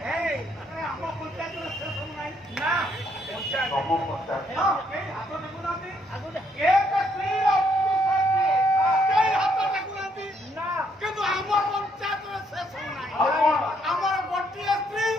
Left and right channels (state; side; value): normal; both; correlation 0.71